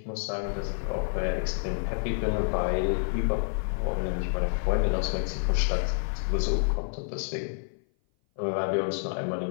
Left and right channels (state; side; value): silent; right; 56 dB below the other